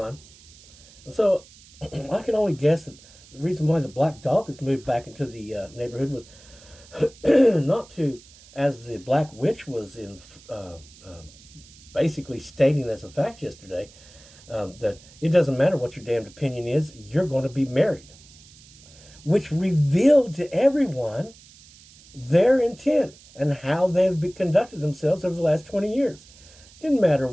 And so I can only guess that the reason why the black dog has moved back into the neighborhood was not to, as the black witch was in basically stating as a fact yesterday, that it doesn't matter what your damned opinion is, you're going to be married, which revealed to everyone their intent and how they've conducted themselves over the last 20 years. Didn't matter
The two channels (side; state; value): right; noise; hiss, 23 dB below the sound